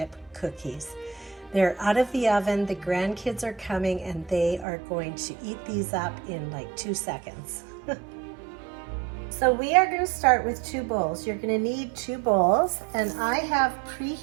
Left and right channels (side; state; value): left; drops out; at 4.7 s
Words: cookies. They're out of the oven, the grandkids are coming, and they are going to eat these up in like 2 seconds. So we are going to start with 2 bowls. You're going to need 2 bowls, and I have